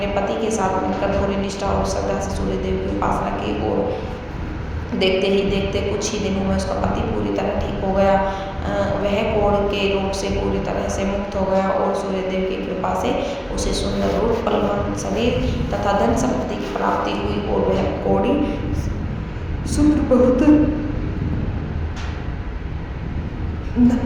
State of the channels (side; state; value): both; identical; correlation 1.00